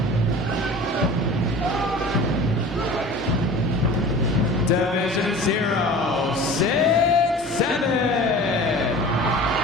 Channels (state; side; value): normal; both; correlation 0.40